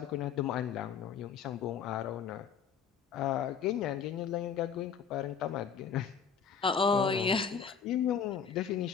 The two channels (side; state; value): right; quieter; 6.9 dB